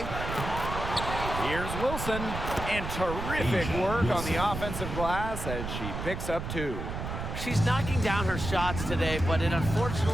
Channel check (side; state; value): right; noise; rumble, 5 dB below the sound